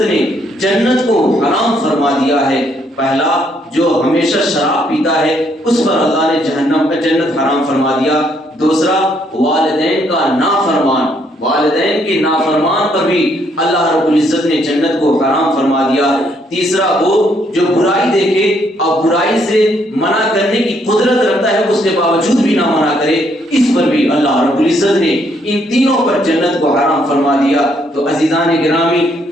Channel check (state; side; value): normal; both; correlation 0.71